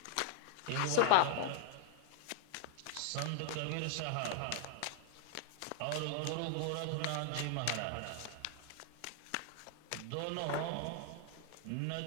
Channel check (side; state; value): both; different; correlation 0.00